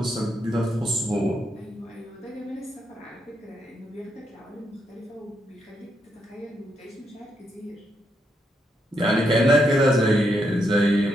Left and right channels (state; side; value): normal; both; correlation 0.79